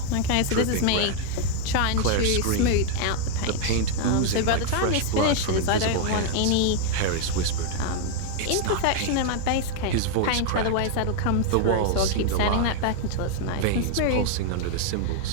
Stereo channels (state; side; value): different; both; correlation 0.00